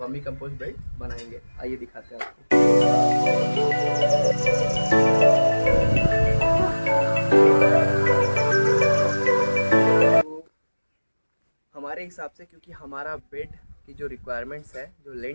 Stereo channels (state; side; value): inverted; both; correlation -1.00